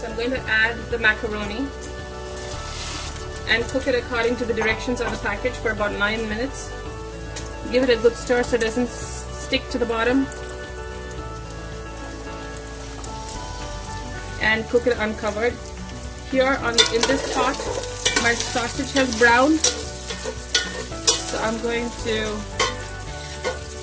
I'm going to add the macaroni and cook it according to the directions on the package for about 9 minutes. Give it a good stir so it doesn't stick to the bottom. And cook it uncovered. Here in this pot, my sausage has browned, so I'm going to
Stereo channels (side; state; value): both; identical; correlation 1.00